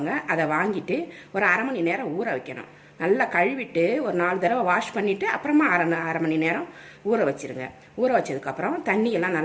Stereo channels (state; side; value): identical; both; correlation 1.00